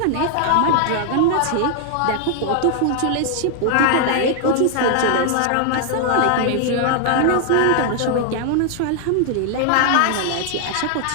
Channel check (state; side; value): different; both; correlation 0.00